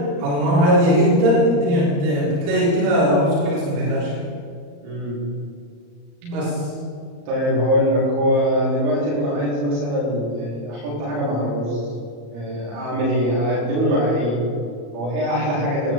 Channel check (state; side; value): late; left; 34 ms